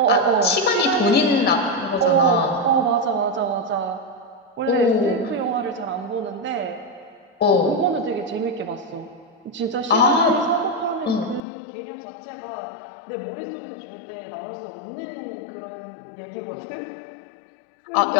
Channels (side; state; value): right; drops out; at 11.4 s